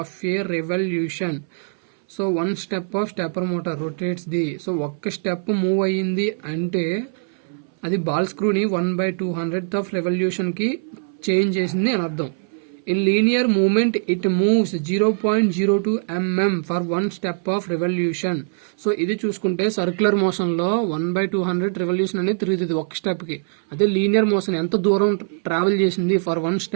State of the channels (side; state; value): left; silent; 61 dB below the other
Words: a revolution. So 1 step of stepper motor rotates the, so ఒక్క స్టెప్ మూవ్ అయ్యింది అంటే అది బాల్ స్క్రూని 1/200th of revolution కి చేంజ్ చేసింది అని అర్థం. In linear movement, it moves 0.02 mm for 1 step of revolution. So ఇది చూసుకుంటే సర్క్యులర్ మోషన్ లో 1/200 రెవల్యూషన్ అనేది తిరుగుతుంది ఒక స్టెప్ కి. అదే లీనియర్ మోషన్ ఎంత దూరం ట్రావెల్ చేసింది ఫర్ 1